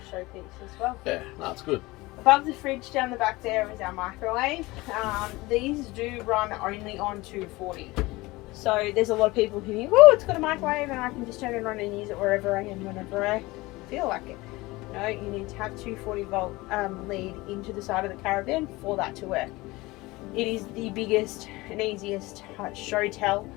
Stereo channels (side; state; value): right; quieter; 21.2 dB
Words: showpiece as well. Yeah, that's good. Above the fridge down the back there is our microwave. These do run only on 240. So there's a lot of people who think, oh, it's got a microwave and I can just turn it on and use it wherever I am, whenever I feel like it. No, you need to have 240 volt lead into the side of the caravan for that to work. It is the biggest and easiest show tell